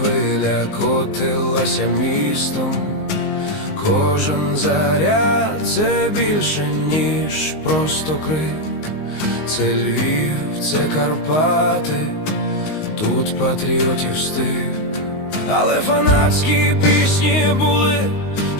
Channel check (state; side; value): late; right; 19 ms